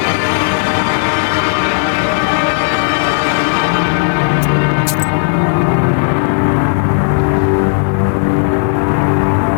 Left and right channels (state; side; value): silent; right; 69 dB below the other